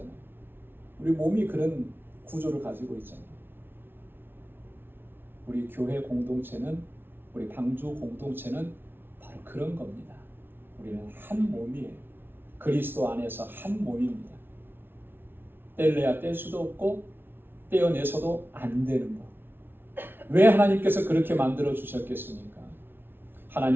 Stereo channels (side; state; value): left; late; 0.11 ms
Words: 우리 몸이 그런 구조를 가지고 있잖아요. 우리 교회 공동체는, 우리 방주 공동체는 바로 그런 겁니다. 우리는 한 몸이에요. 그리스도 안에서 한 몸입니다. 뗄래야 뗄 수도 없고 떼어내서도 안 되는 것. 왜 하나님께서 그렇게 만들어 주셨겠습니까?